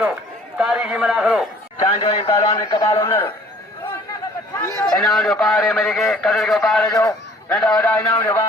तारीखी मना करो चांजो पहलवान कपाल उन्नर इनाम जो पहाड़े मरी के कदर के पहाड़े जो नंदा वड़ा इनाम जो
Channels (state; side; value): normal; both; correlation 0.54